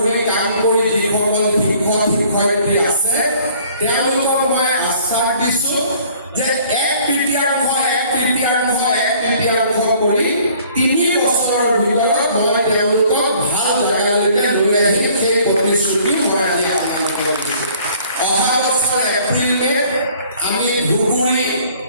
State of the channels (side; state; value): both; inverted; correlation -0.56